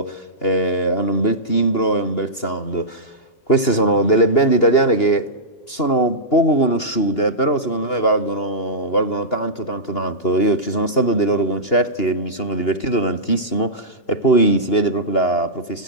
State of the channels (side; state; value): right; late; 2.8 ms